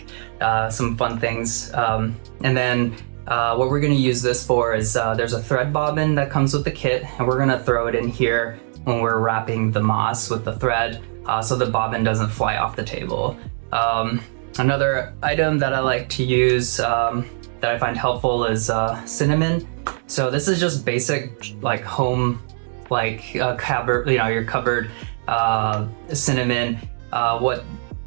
some fun things. And then what we're gonna use this for is there's a thread bobbin that comes with the kit, and we're gonna throw it in here when we're wrapping the moss with the thread so the bobbin doesn't fly off the table. Another item that I like to use that I find helpful is cinnamon. So this is just basic like home, like cupboard, your cupboard cinnamon. What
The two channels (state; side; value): silent; left; digital silence